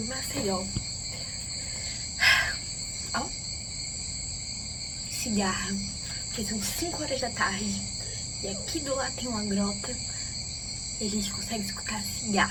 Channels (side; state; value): both; identical; correlation 1.00